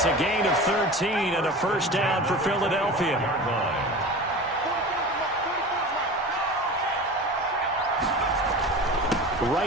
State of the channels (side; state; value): both; normal; correlation 0.33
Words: a gain of 13 and a first down for Philadelphia.